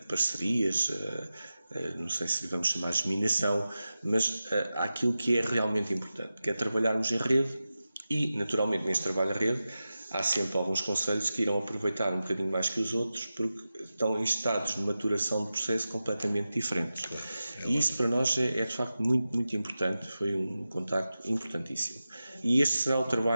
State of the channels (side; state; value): both; inverted; correlation -0.93